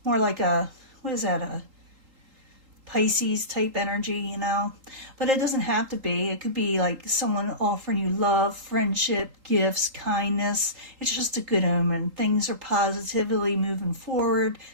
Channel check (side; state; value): left; late; 3.8 ms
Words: More like a, what is that, a Pisces type energy, you know. But it doesn't have to be. It could be like someone offering you love, friendship, gifts, kindness. It's just a good omen. Things are positively moving forward.